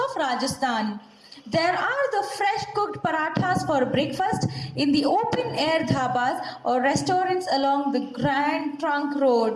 Rajasthan. There are the fresh cooked parathas for breakfast in the open air dhabas or restaurants along the Grand Trunk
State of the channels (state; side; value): identical; both; correlation 1.00